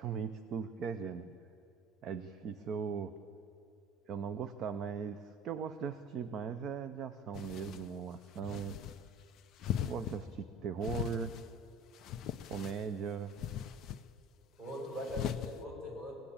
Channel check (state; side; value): normal; both; correlation 0.42